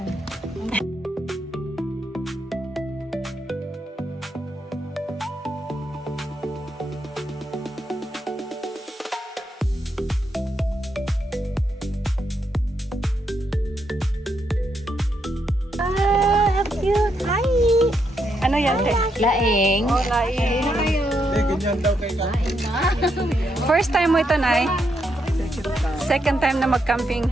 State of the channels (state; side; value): normal; both; correlation 0.79